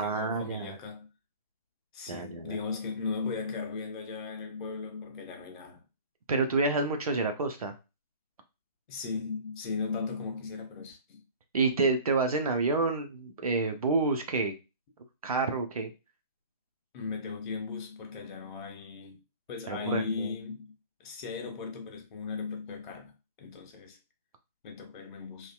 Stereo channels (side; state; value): both; inverted; correlation -0.43